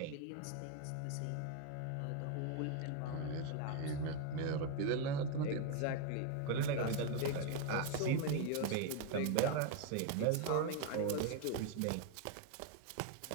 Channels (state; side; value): different; both; correlation 0.01